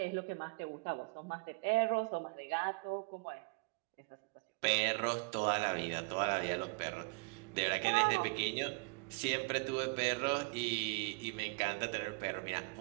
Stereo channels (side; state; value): left; quieter; 30.9 dB